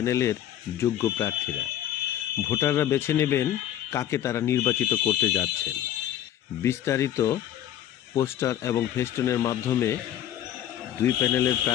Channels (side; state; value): right; quieter; 11.6 dB